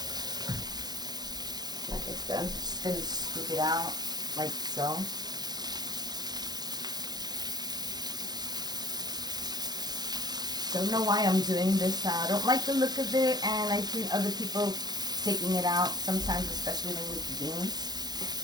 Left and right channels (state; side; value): late; left; 0.20 ms